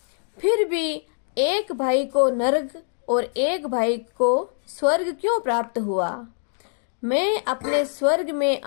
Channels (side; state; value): right; silent; digital silence